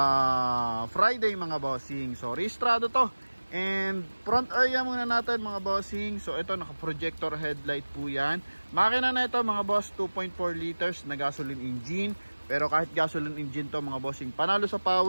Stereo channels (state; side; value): inverted; both; correlation -1.00